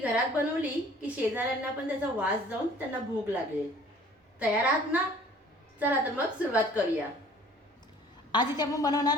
बनवली की शेजाऱ्यांना पण त्याचा वास जाऊन त्यांना भूक लागेल. तयार आहात ना? चला तर मग सुरुवात करूया. आज इथे आपण बनवणार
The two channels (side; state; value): both; normal; correlation 0.52